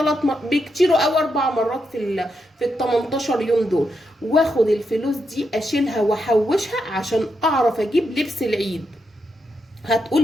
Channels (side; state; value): both; normal; correlation 0.83